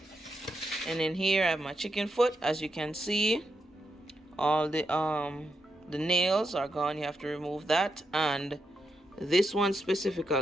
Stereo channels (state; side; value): normal; both; correlation 0.84